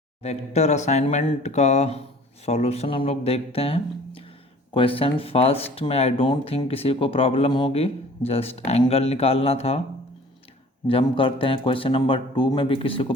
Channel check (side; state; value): both; normal; correlation 0.49